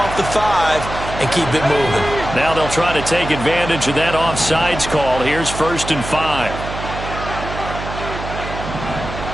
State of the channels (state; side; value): noise; right; hum, 8 dB below the sound